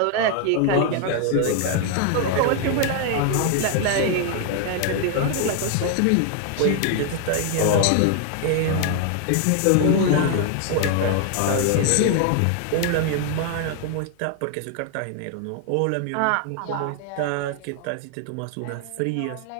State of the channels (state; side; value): different; both; correlation 0.00